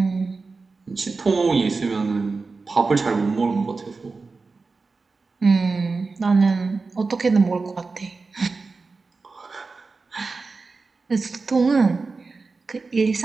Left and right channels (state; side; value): quieter; left; 4.1 dB